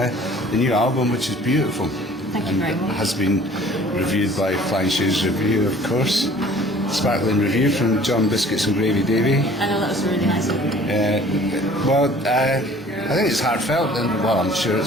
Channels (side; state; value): both; normal; correlation 0.51